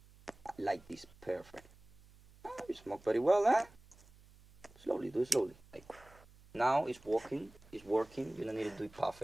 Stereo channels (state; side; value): noise; right; hum, 25 dB below the sound